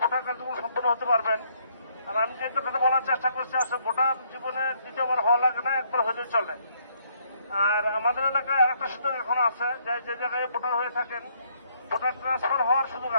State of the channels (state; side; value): inverted; both; correlation -0.69